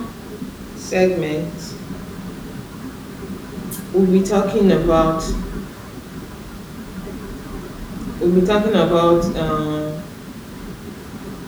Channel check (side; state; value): both; identical; correlation 1.00